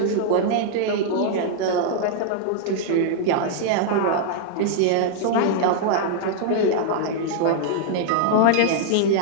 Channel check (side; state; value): both; different; correlation -0.01